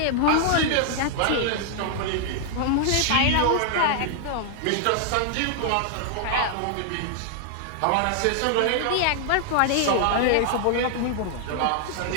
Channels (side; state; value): both; different; correlation 0.00